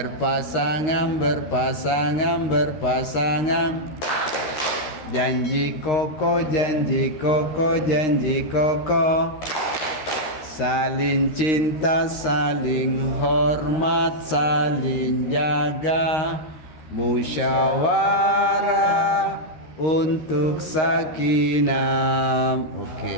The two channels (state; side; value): late; right; 13 ms